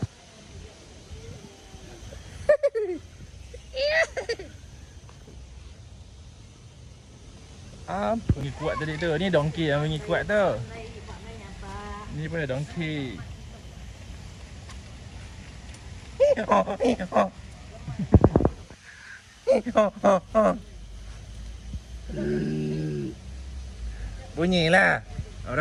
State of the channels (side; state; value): both; identical; correlation 1.00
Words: Apa ni kuat tadi tu? Ni donkey yang bunyi kuat tu. Ni pun donkey. Bunyilah.